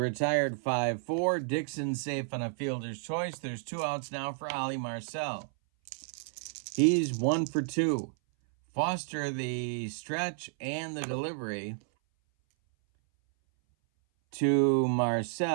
5-4. Dixon safe on a fielder's choice. There's 2 outs now for Ali Marcel. He's 1 for 2. Foster the stretch and the delivery to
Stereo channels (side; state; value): left; silent; 57 dB below the other